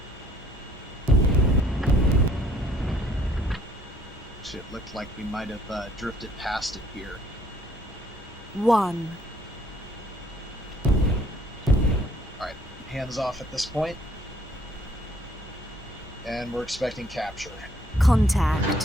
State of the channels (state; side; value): normal; both; correlation 0.62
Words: It looked like we might have drifted past it here. 1. Alright, hands off at this point. And we're expecting capture.